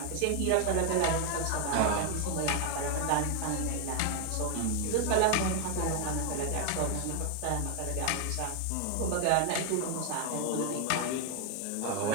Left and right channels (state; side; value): different; both; correlation 0.00